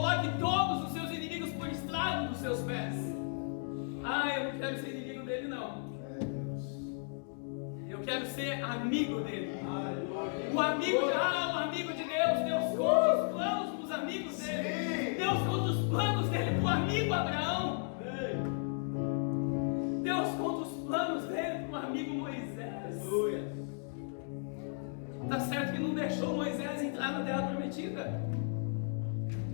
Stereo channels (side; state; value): right; silent; 55 dB below the other